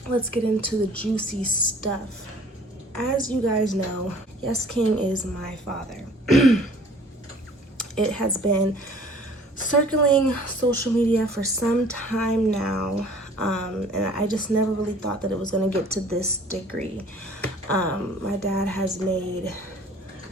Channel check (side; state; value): both; normal; correlation 0.51